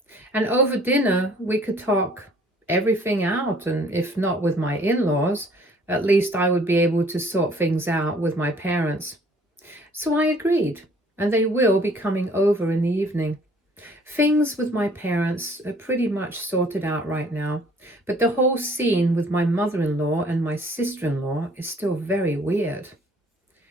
And over dinner, we could talk everything out, and if not with my in-laws, at least I would be able to sort things out with my parents. So I agreed, and they will be coming over in the evening. Things with my parents are pretty much sorted out right now, but the whole scene with my mother-in-law and my sister-in-law is still very weird.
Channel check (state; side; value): normal; both; correlation 0.57